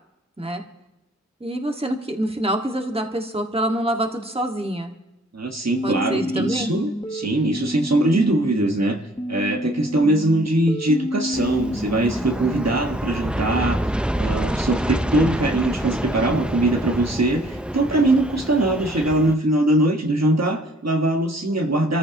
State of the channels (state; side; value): normal; both; correlation 0.58